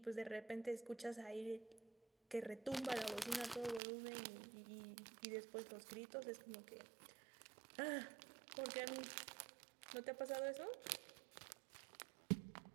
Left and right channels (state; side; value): drops out; left; at 3.8 s